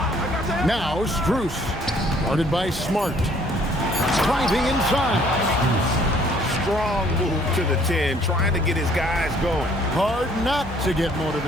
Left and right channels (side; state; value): both; normal; correlation 0.60